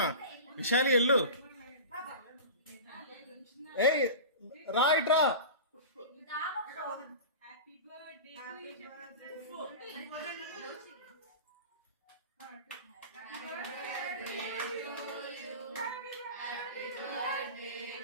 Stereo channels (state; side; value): inverted; both; correlation -0.31